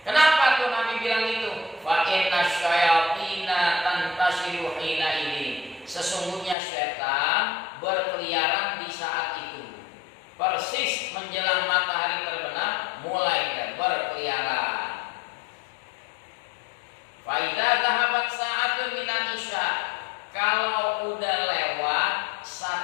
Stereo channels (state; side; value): drops out; right; at 6.6 s